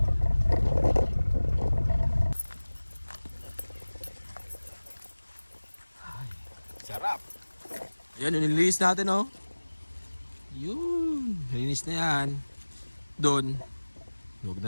Sarap. Yan, nilinis natin oh. Yun, nilinis na yan. Doon. Huwag na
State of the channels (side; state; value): both; inverted; correlation -1.00